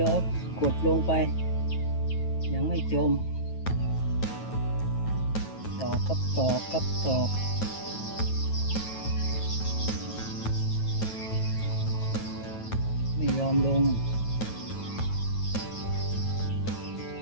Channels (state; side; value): late; right; 9.2 ms